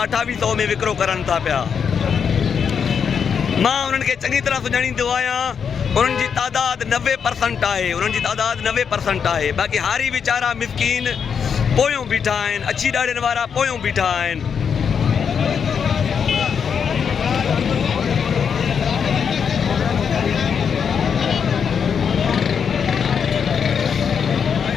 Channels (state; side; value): quieter; right; 6.9 dB